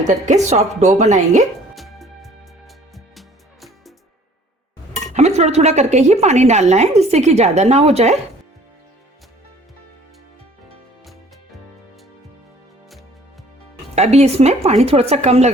करके सॉफ्ट डो बनाएंगे। हमें थोड़ा थोड़ा करके ही पानी डालना है, जिससे कि ज्यादा ना हो जाए। अभी इसमें पानी थोड़ा सा कम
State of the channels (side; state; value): both; normal; correlation 0.53